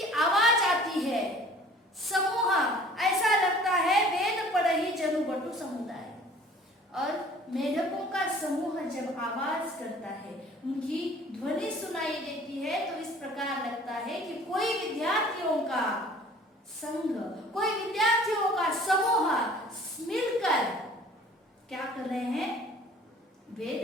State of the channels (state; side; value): normal; both; correlation 0.50